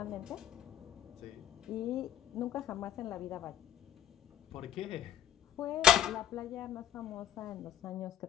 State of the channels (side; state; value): right; quieter; 10.9 dB